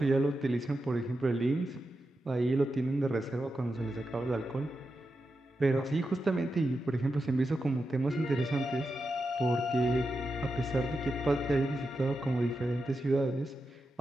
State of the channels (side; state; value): both; normal; correlation 0.89